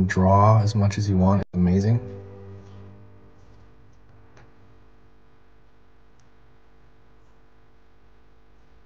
draw as much as you want is amazing.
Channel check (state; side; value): identical; both; correlation 1.00